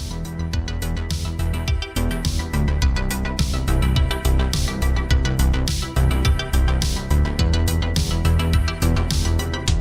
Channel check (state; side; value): identical; both; correlation 1.00